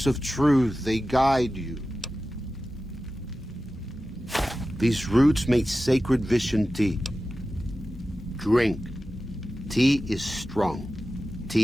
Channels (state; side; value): normal; both; correlation 0.94